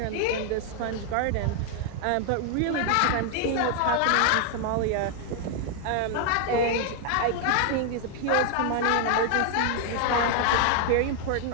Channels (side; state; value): both; different; correlation 0.00